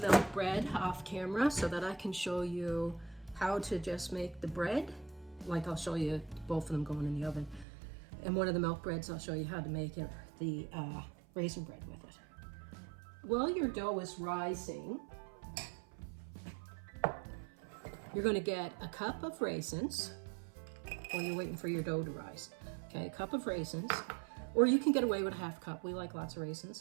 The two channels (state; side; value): drops out; left; at 7.7 s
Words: bread off camera so that I can show you how to just make the bread. Like I'll show you both of them going in the oven. And one of the milk breads, I'll show you how to make it, the raisin bread with it. While your dough is rising, you're going to get a cup of raisins while you're waiting for your dough to rise. Okay, a cup of raisins, or you can get away with a half cup. We like lots of